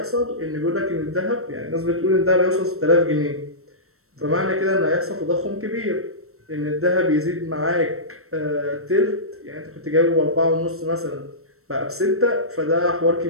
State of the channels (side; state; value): left; late; 0.63 ms